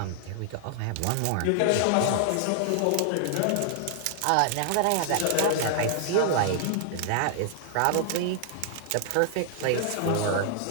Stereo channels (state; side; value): different; both; correlation 0.00